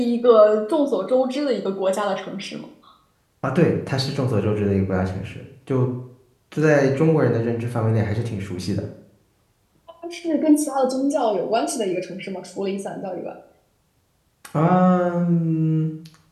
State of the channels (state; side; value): identical; both; correlation 1.00